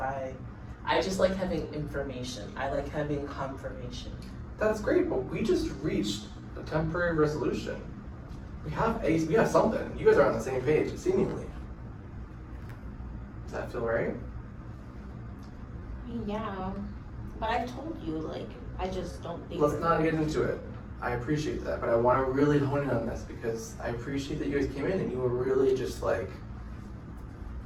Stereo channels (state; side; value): identical; both; correlation 1.00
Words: I just like having information. I like having confirmation. That's great, but we just reached a temporary resolution. We have something. You guys are on the same page, seemingly. Does that feel right? I mean, yeah, but I told you, like, I just don't think. Let's not get into it. I appreciate that, but I want to really hone in on this because I appreciate that you guys came in and you were really just like,